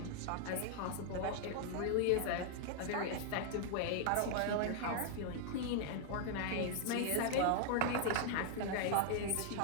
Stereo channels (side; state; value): both; different; correlation 0.00